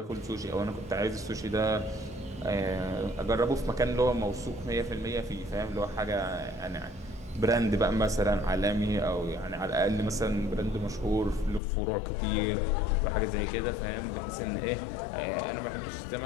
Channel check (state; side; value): drops out; right; at 11.6 s